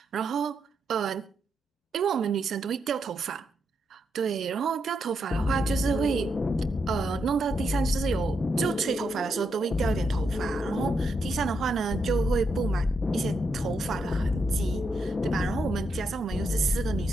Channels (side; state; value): both; normal; correlation 0.81